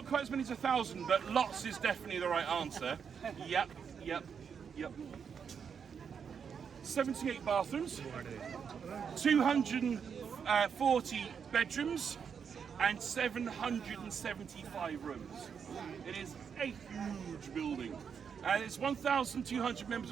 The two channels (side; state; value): left; quieter; 6.9 dB